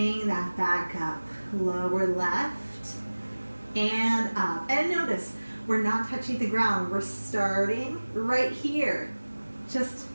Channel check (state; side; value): inverted; both; correlation -1.00